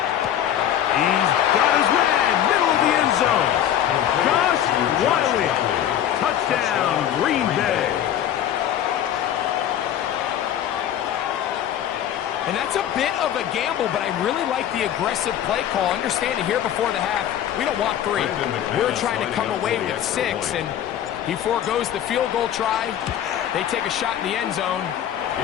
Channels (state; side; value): quieter; right; 10.7 dB